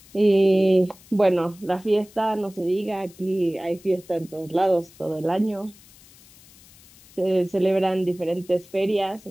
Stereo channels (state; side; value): noise; left; hiss, 25 dB below the sound